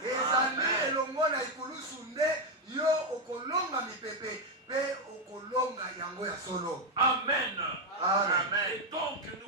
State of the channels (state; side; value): normal; both; correlation 0.04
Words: ezali elongo na ikulusu nde yo okolonga mipepe mpe okolonga yango ya solo. Amen. Amen. Et donc